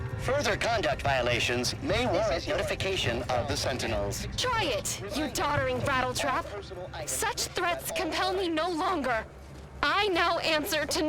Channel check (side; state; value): both; identical; correlation 1.00